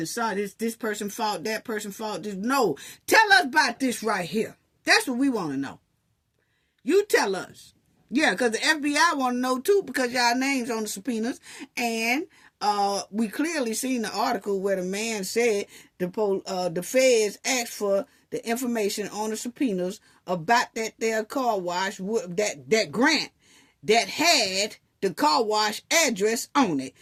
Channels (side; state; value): both; identical; correlation 1.00